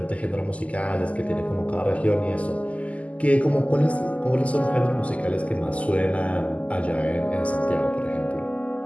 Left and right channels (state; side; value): late; right; 0.068 ms